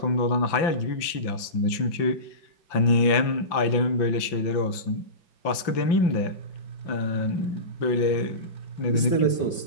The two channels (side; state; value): right; late; 5.8 ms